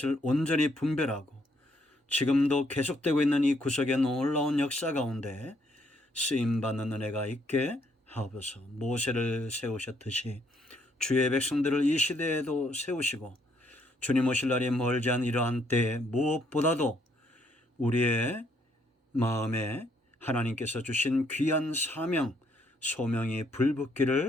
온전히 분별하고 지금도 계속되고 있는 이 구속의 놀라운 역사 가운데 쓰임받는 은혜가 있게 하옵소서. 모세를 세우셨듯이 주의 백성들을 이 시대에도 세우시고 주님 오실 날이 멀지 않은 이러한 때에 무엇보다도 우리의 마음에 하나님께서 주신 귀한 사명, 소명이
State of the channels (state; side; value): normal; both; correlation 0.70